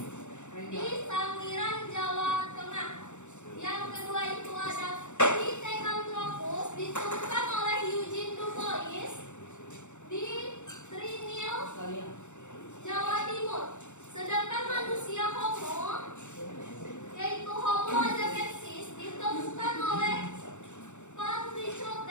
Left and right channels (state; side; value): late; right; 0.84 ms